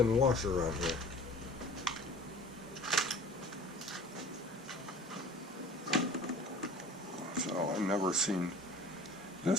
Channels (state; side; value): normal; both; correlation 0.43